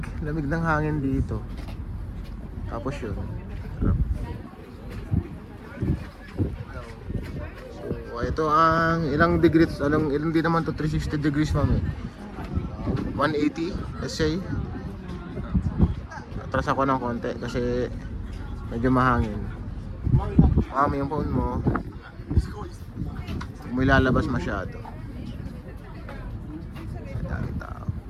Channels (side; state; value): both; identical; correlation 1.00